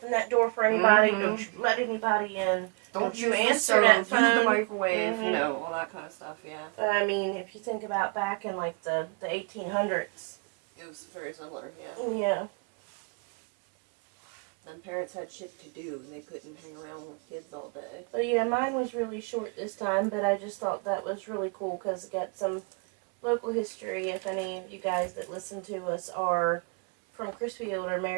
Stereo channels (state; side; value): quieter; left; 35.3 dB